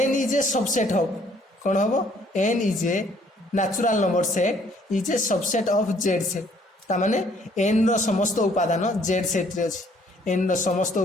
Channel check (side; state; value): both; normal; correlation 0.62